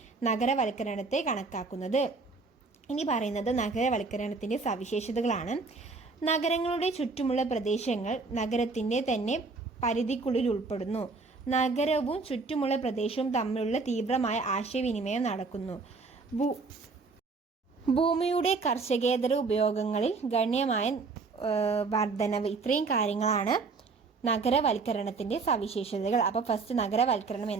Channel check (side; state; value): left; quieter; 4.2 dB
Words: നഗരവൽക്കരണത്തെ കണക്കാക്കുന്നത്. ഇനി പറയുന്നത് നഗരവൽക്കരണത്തിൻ്റെ സവിശേഷതകളാണ്. നഗരങ്ങളുടെ ചുറ്റുമുള്ള പ്രദേശങ്ങൾ നഗരത്തിൻ്റെ തന്നെ പരിധിക്കുള്ളിൽ ഉൾപ്പെടുന്നു. നഗരവും ചുറ്റുമുള്ള പ്രദേശവും തമ്മിലുള്ള തീവ്രമായ ആശയവിനിമയം നടക്കുന്നു. ഭൂമിയുടെ കർഷകേതര ഉപയോഗങ്ങളിൽ ഗണ്യമായ വർധനവ്. ഇത്രയും കാര്യങ്ങളാണ് നഗരവൽക്കരണത്തിൻ്റെ സവിശേഷതകൾ. അപ്പോൾ ഫസ്റ്റ് നഗരവൽക്കരണം